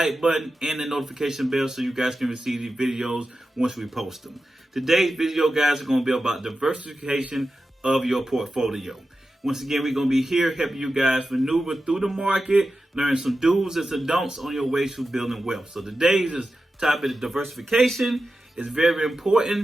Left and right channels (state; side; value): normal; both; correlation 0.92